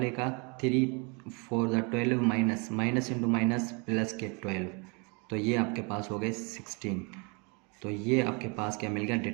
का 3 4 ज़ा 12, माइनस इंटू माइनस प्लस के 12, तो ये आपके पास हो गए 16। तो ये आपके पास क्या मिल गया,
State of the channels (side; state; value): left; quieter; 32.1 dB